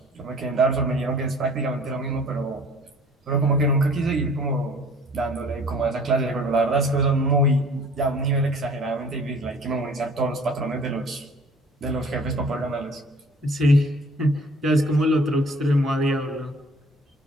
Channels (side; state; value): both; normal; correlation 0.51